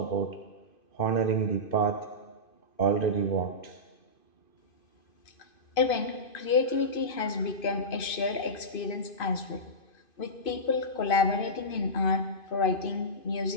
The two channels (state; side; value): late; right; 2.5 ms